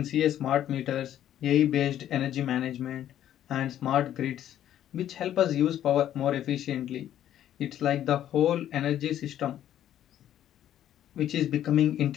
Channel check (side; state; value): right; quieter; 11.3 dB